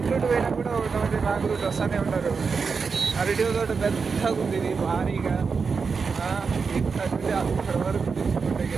రూట్ పోయినా కూడా ఒకటి రాంగ్ రూట్ వస్తూనే ఉంటారు. అరటి తోట పెద్దగా ఉంది, ఇది భారీగా అక్కడ వరకు తీసుకుంటే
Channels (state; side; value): quieter; left; 5.2 dB